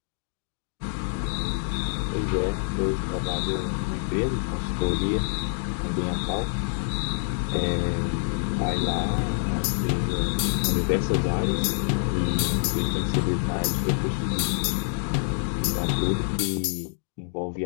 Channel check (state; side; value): silent; right; digital silence